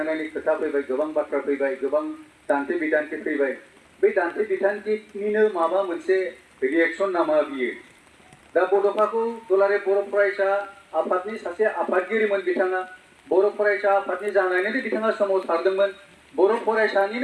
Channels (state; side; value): identical; both; correlation 1.00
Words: खोथा फैबाय गोबां बाथ्रा फैबाय गोबां दान्थे बिदान्थे फैबाय बे दान्थे बिदान्थेनिनो माबा मोनसे रिएक्शन नामा बियो दा बड'फाखौ दुलाराय बर' फरायसा आफादनि सासे आफादगिरिमोन बिथाङा बर' फरायसा आफादनि जानानैनो बिथाङा सोमावसारदोंमोन बर'